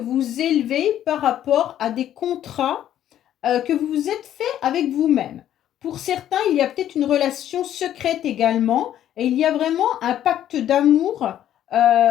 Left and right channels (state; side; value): quieter; right; 11.3 dB